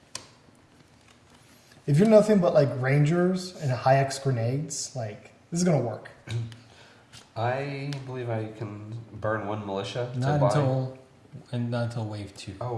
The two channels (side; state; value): both; identical; correlation 1.00